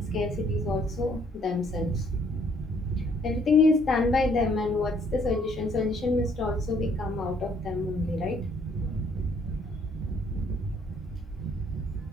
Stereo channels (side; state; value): both; normal; correlation 0.65